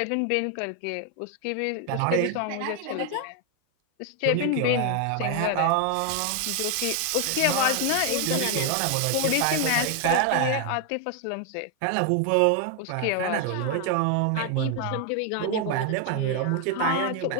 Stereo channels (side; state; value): both; different; correlation 0.00